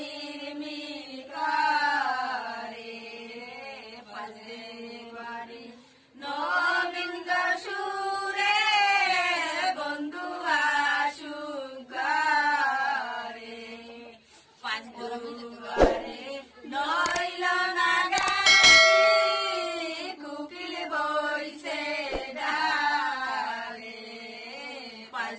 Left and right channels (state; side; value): identical; both; correlation 1.00